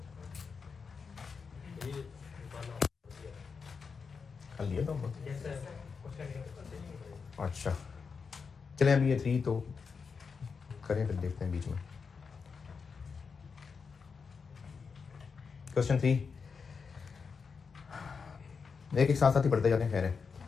कर लिया तो अच्छा चलें, अभी ये 3 तो करें, फिर देखते हैं बीच में। क्वेश्चन 3 एक साथ साथ ही पढ़ते जाते हैं। खैर है,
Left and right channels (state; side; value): quieter; right; 5.4 dB